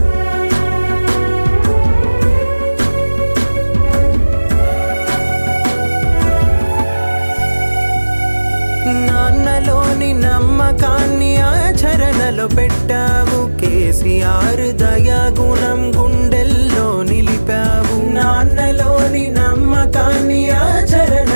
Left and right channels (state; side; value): inverted; both; correlation -1.00